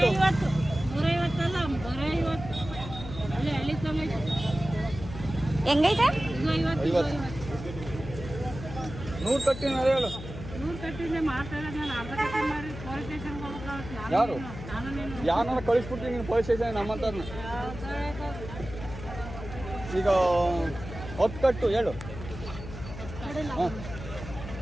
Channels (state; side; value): noise; left; hum, 11 dB below the sound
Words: 150 ಅಲ್ಲ 150 ಅಲ್ಲೇ ಹಳ್ಳಿ ತಂಗೈತೆ ಹೆಂಗೈತೆ 50 100 ಕಟ್ಟಿ ಹೇಳು 100 ಕಟ್ಟಿಂದ ಮಾಡ್ತಾರೆ ನಾನು ಅರ್ಧ ಕಟ್ಟಿ ಮಾಡಿ ಪೊಲೀಸ್ ಸ್ಟೇಷನ್ಗೆ ಹೋಗ್ಬೇಕು ಯಾರು ನಾನು ನೀನು ಯಾರನ್ನ ಕಳಿಸ್ಬಿಡ್ತೀನಿ ನೀನು ಪೊಲೀಸ್ ಸ್ಟೇಷನ್ ನಮ್ಮಂತವ್ರನ್ನ ಈಗ 10 ಕಟ್ಟು ಹೇಳು ಹಾಂ